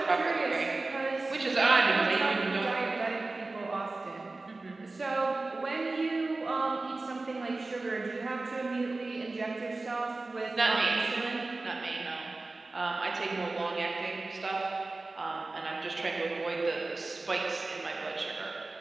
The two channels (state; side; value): quieter; left; 3.3 dB